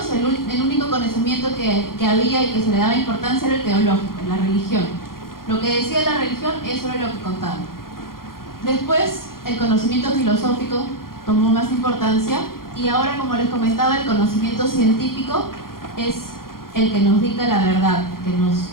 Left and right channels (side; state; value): right; late; 0.92 ms